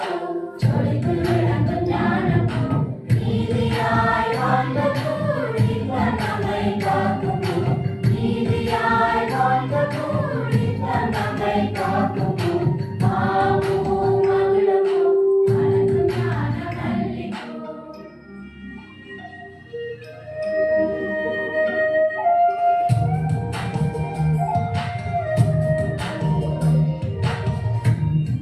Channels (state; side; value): identical; both; correlation 1.00